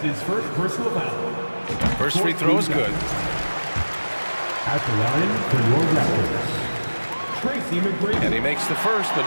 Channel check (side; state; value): both; inverted; correlation -1.00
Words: his first personal foul. First free throw is good. At the line for your Raptors, Tracy McGrady. And he makes the first, but